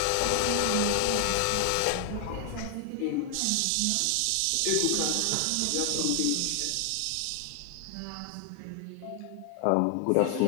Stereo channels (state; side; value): different; both; correlation 0.00